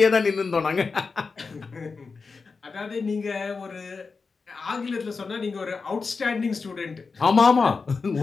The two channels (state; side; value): quieter; right; 4.6 dB